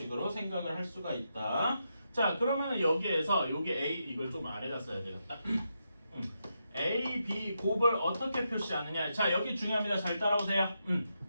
생각을 할 수가 있다. 자, 그러면은 여기에서 여기 A 이걸 좀 아래다 써야 되겠다. A, B 곱을 어떻게 표시하느냐? 자, 여기 중요합니다. 잘 따라오세요.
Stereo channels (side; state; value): both; inverted; correlation -0.84